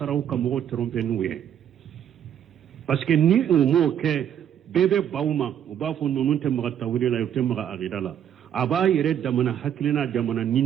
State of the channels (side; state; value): left; quieter; 9.6 dB